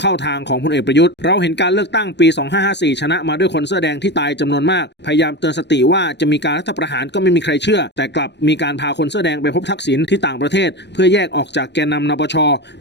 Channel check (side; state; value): right; late; 0.50 ms